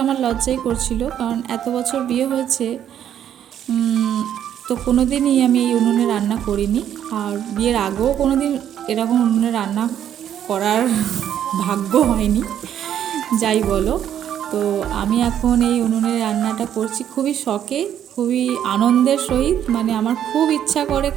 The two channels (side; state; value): left; quieter; 10.0 dB